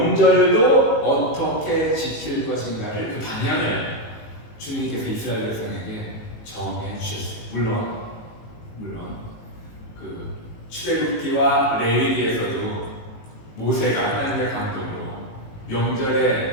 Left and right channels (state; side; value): late; right; 18 ms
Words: 어떻게 지킬 것인가를 그 방향을 주님께서 이스라엘 백성에게 정해 주셨어요. 물론 그 출애굽기와 레위기에서도 모세가 하나님의 감동으로